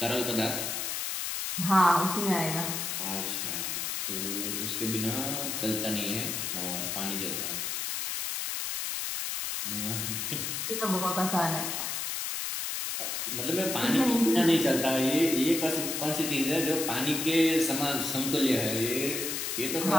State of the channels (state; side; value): noise; left; hiss, 2 dB below the sound